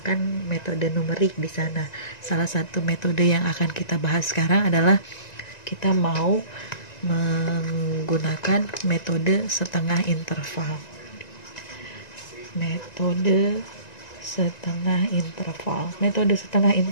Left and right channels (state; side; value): late; right; 1.9 ms